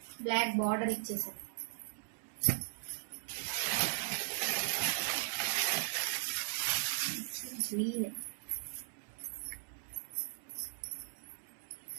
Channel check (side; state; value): left; silent; digital silence